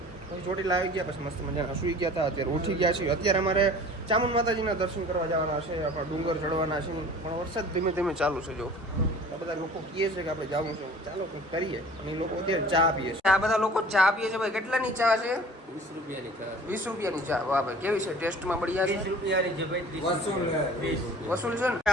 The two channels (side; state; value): both; normal; correlation 0.46